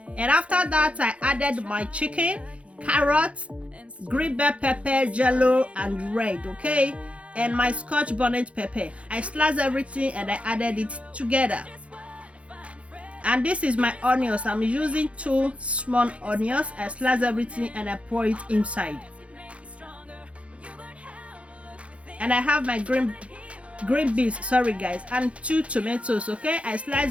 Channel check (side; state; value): left; late; 0.062 ms